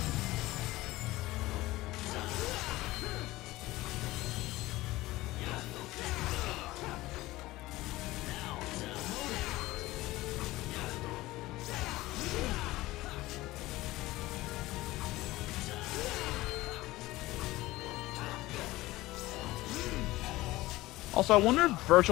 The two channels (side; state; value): right; quieter; 18.3 dB